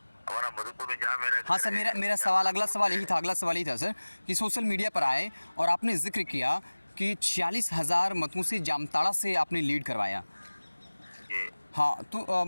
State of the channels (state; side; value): inverted; both; correlation -1.00